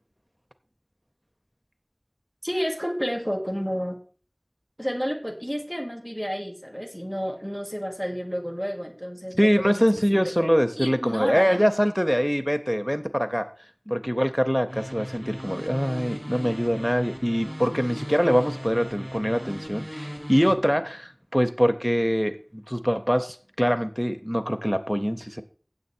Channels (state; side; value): identical; both; correlation 1.00